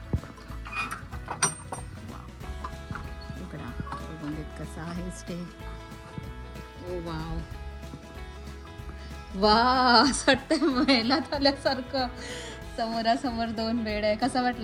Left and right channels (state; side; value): identical; both; correlation 1.00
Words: इकडा बघून देत कसा आहे स्टे। ओ वाव वा, असं वाटतंय महिन्यात आल्यासारखं। समोरासमोर 2 बेड आहे। कसा